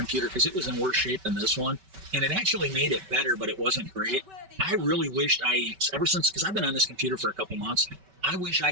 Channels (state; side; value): late; left; 5.2 ms